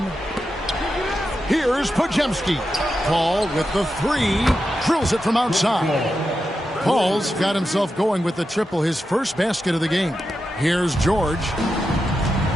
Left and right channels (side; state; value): both; normal; correlation 0.89